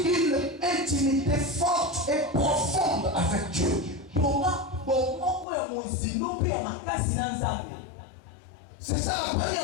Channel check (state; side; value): drops out; right; at 5.5 s